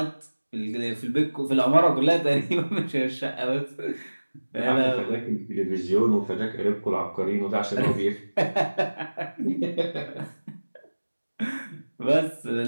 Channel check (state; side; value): inverted; both; correlation -1.00